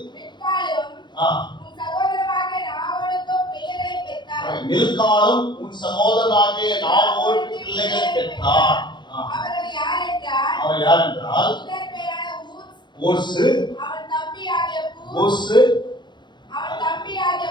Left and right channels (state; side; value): late; right; 0.22 ms